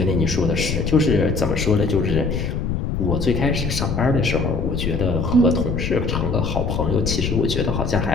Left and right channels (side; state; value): left; noise; rumble, 1 dB below the sound